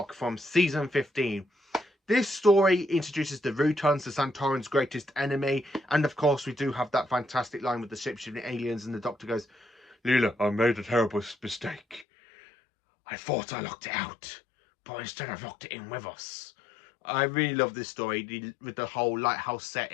from season 15. This story introduces the Rutons, the Santoran's greatest enemy. And of course, we do have that fantastic line with the shapeshifting aliens, and the Doctor goes, Leela, I made a terrible mistake. I thought I locked it out, but instead I've locked it in with us. I really love this story with the whole lighthouse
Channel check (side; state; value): right; drops out; at 12.1 s